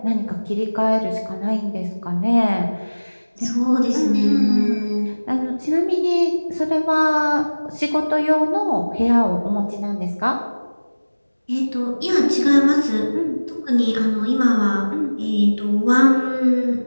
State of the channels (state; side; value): inverted; both; correlation -1.00